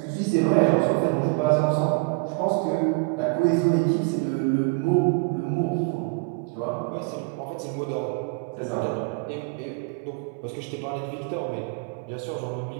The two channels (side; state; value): left; quieter; 32.3 dB